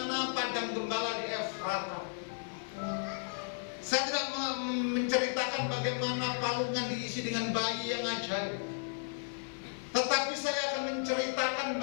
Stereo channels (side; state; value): right; silent; digital silence